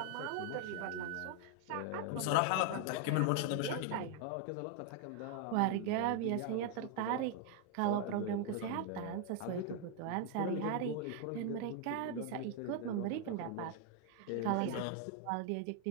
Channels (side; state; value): both; different; correlation 0.00